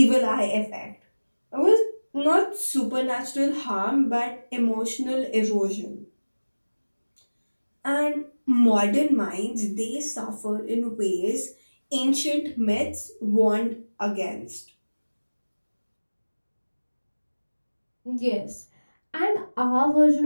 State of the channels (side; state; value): both; inverted; correlation -1.00